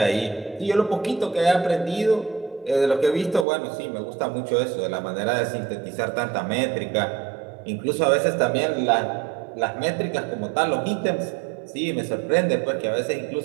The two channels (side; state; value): left; drops out; at 3.5 s